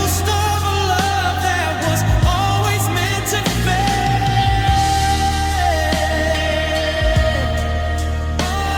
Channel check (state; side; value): identical; both; correlation 1.00